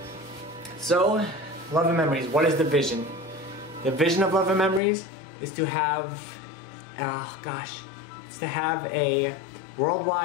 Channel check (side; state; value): right; drops out; at 4.8 s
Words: So, Love and Memories, what is the vision? The vision of Love and Memories is to have, it's to have a